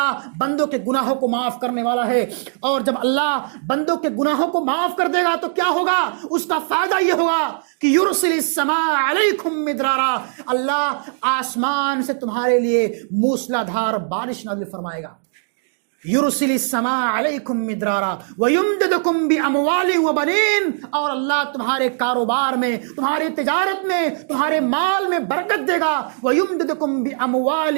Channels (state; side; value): silent; left; digital silence